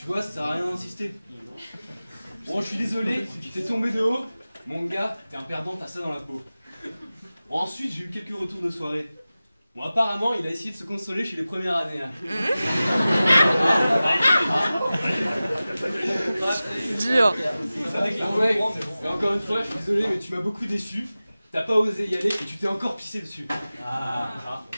vois, ça sert à rien d'insister. Bon, je suis désolé, tu t'es tombé de haut. Mon gars, t'es un perdant, t'as ça dans la peau. Bon, ensuite, j'ai eu quelques retours de soirée. Bon, apparemment, il a essayé de se consoler chez les premières années. Hein. Dur. Ouais, et encore une fois, je suis désolé, mais tu m'as beaucoup déçu. T'as pas osé y aller et tu t'es encore pissé dessus.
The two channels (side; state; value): both; inverted; correlation -0.96